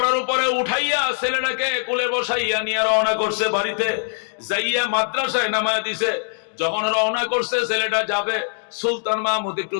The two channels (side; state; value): right; silent; digital silence